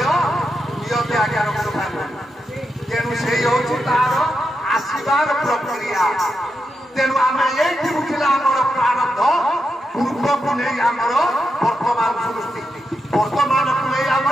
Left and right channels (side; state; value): both; normal; correlation 0.86